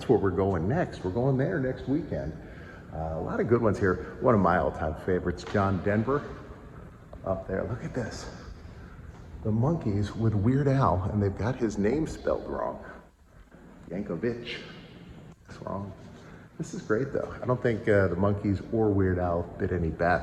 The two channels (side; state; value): both; identical; correlation 1.00